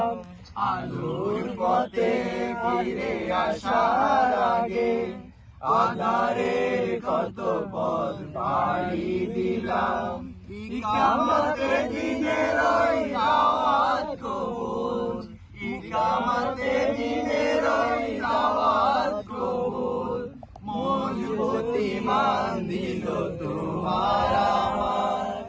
আলোর পথে ফিরে আসার আগে আঁধারের কত পথ পাড়ি দিলাম। কিয়ামতের দিনের ওই দাওয়াত কবুল, কিয়ামতের দিনের ওই দাওয়াত কবুল, মজবুত ঈমান দিল তোমার আমার।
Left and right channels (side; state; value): both; identical; correlation 1.00